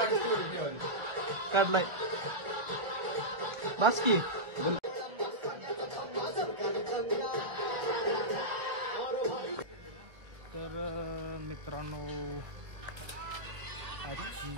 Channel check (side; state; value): left; late; 1.3 ms